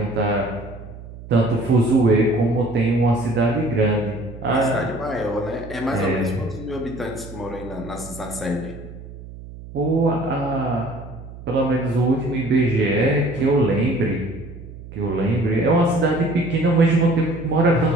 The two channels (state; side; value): noise; right; hum, 15 dB below the sound